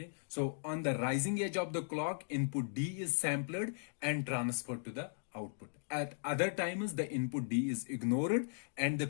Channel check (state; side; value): silent; right; digital silence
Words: so on the rising edge of the clock, input D is sampled and transferred to the output. At other times, the input D is ignored and the